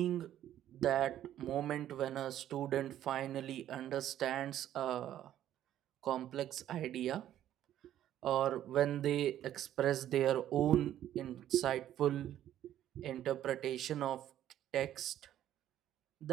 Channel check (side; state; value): left; quieter; 11.8 dB